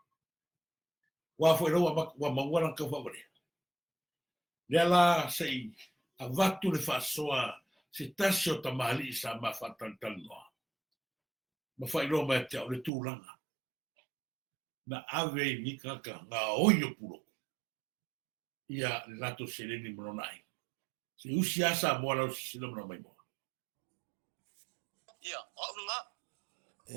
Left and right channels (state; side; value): drops out; left; at 12.9 s